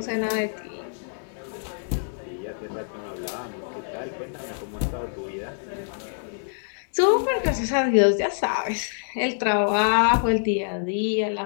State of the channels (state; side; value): silent; right; 61 dB below the other